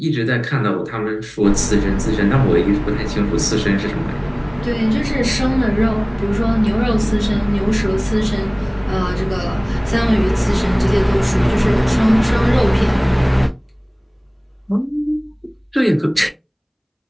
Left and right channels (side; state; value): both; identical; correlation 1.00